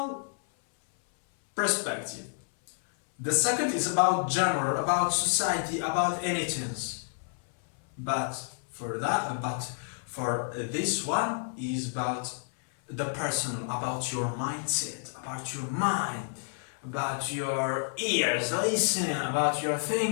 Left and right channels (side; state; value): right; silent; 58 dB below the other